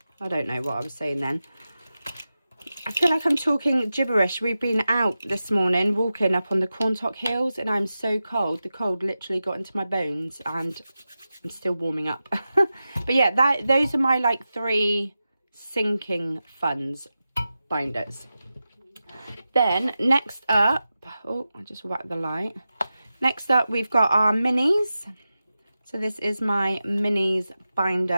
I don't know what I was saying then. I feel like I'm talking gibberish. We've been out this morning walking up on the Quantock Hills and I'm so cold. The cold literally got into my bones and I'm still warming up. But yeah, those are my like 3 sinking funds binders. Then next up, oh, I just whacked the light. Next up, we've got our minis. So this is my minis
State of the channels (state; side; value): inverted; both; correlation -0.93